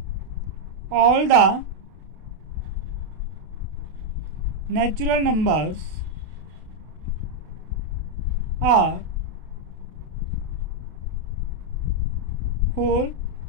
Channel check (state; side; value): late; left; 32 ms